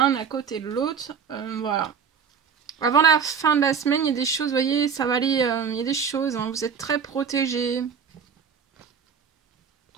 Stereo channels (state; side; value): quieter; left; 6.9 dB